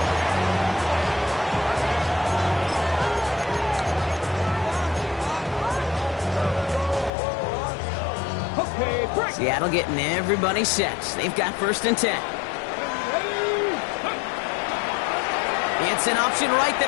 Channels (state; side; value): drops out; right; at 7.1 s